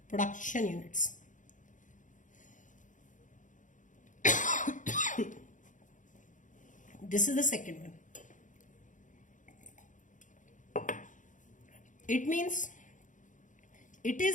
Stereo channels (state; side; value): late; right; 0.37 ms